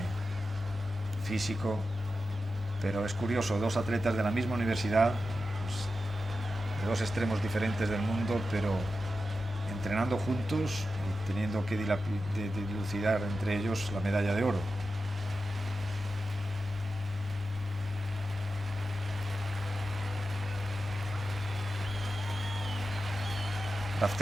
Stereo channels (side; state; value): both; normal; correlation 0.91